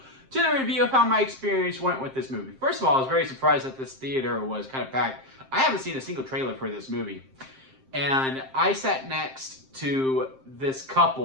to the review of how my experience went with this movie. First of all, I was very surprised that this theater was kind of packed. I haven't seen a single trailer for this movie. And I sat next to this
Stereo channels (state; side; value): late; left; 7.6 ms